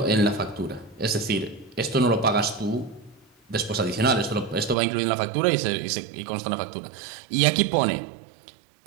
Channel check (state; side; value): drops out; left; at 4.8 s